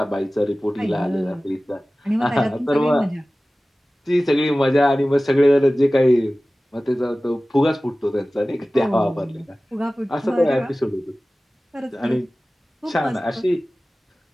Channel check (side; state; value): both; normal; correlation 0.97